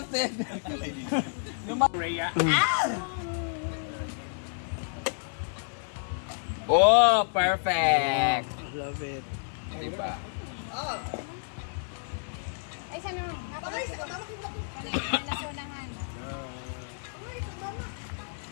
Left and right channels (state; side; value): silent; right; digital silence